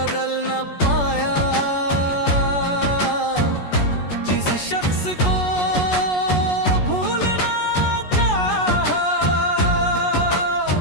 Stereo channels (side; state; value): right; late; 14 ms